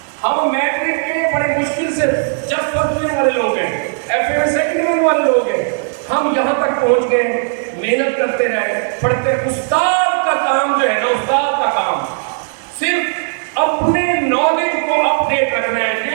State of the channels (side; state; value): left; silent; 69 dB below the other